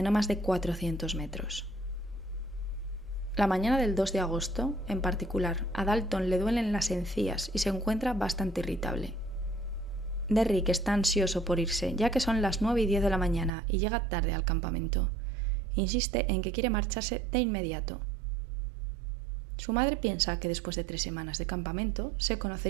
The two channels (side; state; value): left; drops out; at 13.5 s